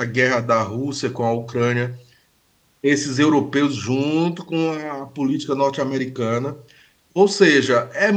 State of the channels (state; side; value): identical; both; correlation 1.00